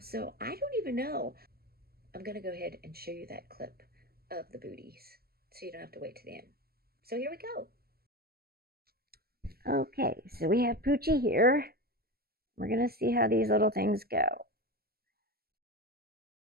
I don't even know. I'm going to go ahead and show you that clip of the booties so you don't have to wait to the end. So here we go. Okay, so we have Poochie here. We're going to see how these little things go.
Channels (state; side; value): late; left; 0.45 ms